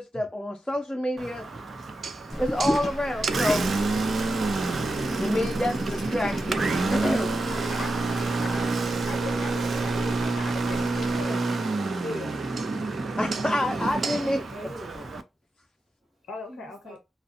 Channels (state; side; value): normal; both; correlation 0.90